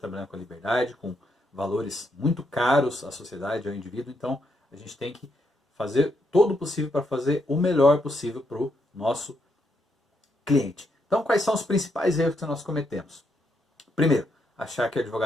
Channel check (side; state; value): both; normal; correlation 0.78